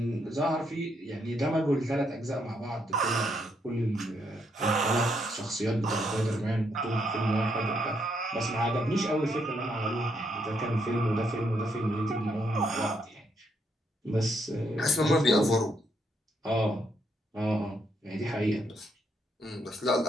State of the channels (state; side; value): normal; both; correlation 0.75